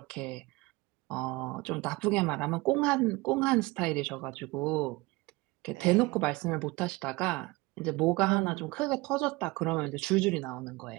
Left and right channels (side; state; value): left; quieter; 22.9 dB